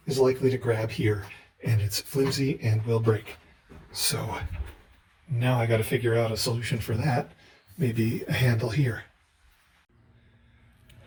is likely to grab here, and it's flimsy and will break. So now I got to figure out a solution for that. Maybe a handle here.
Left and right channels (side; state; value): both; identical; correlation 1.00